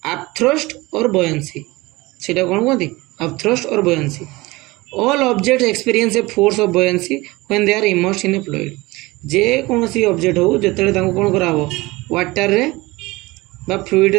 upthrust और buoyancy. सेटा कौन कहते अपथ्रस्ट और buoyancy. All object experience a force of buoyancy when they are immersed in a fluid. जे कौन सी ऑब्जेक्ट हो जिते कौन कराब वाटर रे बा फ्लूइड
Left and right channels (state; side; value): quieter; left; 21.6 dB